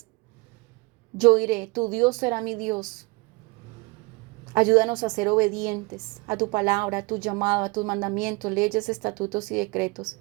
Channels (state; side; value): quieter; left; 26.1 dB